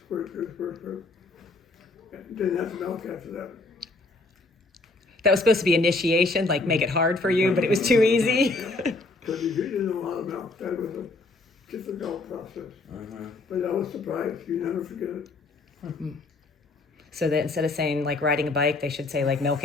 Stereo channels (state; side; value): quieter; right; 3.3 dB